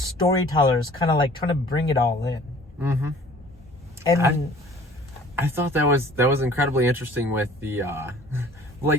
kind of like trying to bring it all in. And I thought that was incredibly interesting with the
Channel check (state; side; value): normal; both; correlation 0.50